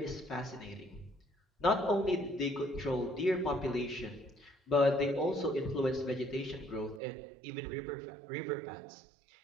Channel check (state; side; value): drops out; left; at 7.0 s